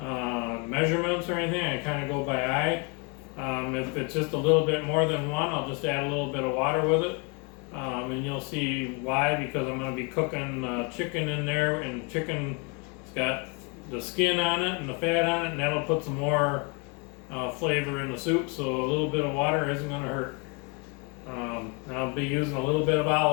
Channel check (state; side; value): quieter; right; 32.2 dB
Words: measurements or anything. I kind of go by eye. If it's just a little bit more than 1, I'll just add a little bit of water with it. And you'll see why, because I'm going to be cooking chicken in there, and chicken's got the skin on it and the fat on it, and that'll put some more flavor in the soup, so a little bit of water isn't going to hurt. I'll be using a little bit of